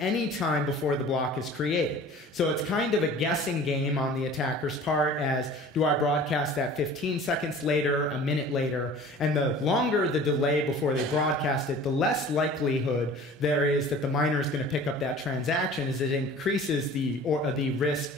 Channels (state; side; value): normal; both; correlation 0.44